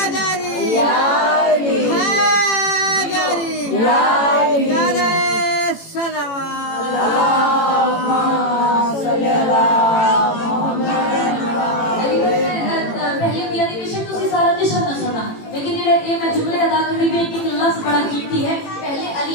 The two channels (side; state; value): right; late; 18 ms